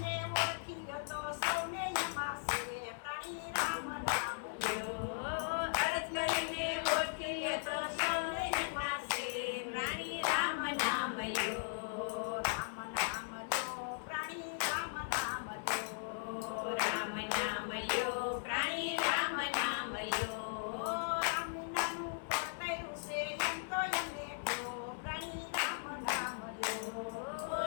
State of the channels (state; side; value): silent; right; 52 dB below the other